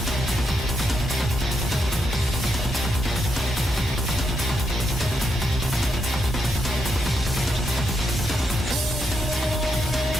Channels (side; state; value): both; normal; correlation 0.81